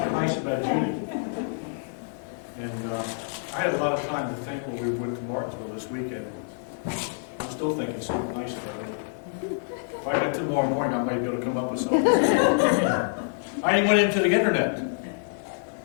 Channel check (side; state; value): right; silent; 60 dB below the other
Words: nice about Judy. And I had a lot of time to think when we went to Martinsville this weekend. I'm still thinking something nice about her. If I got tomorrow morning, I might be able to come up with something. I even went into the internet.